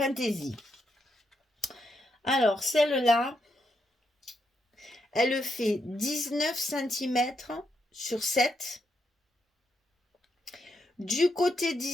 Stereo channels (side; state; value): both; normal; correlation 0.81